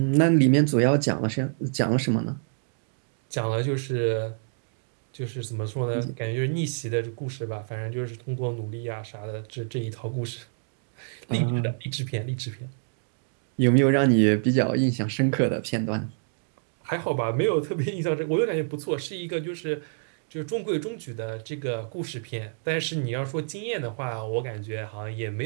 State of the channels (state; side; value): silent; left; digital silence